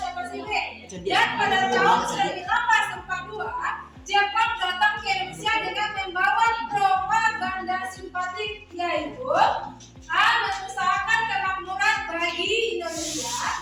Pasifik. Dan pada tahun 1942, Jepang datang ke Indonesia dengan membawa propaganda simpatik, yaitu A. Mengusahakan kemakmuran bagi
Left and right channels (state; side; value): identical; both; correlation 1.00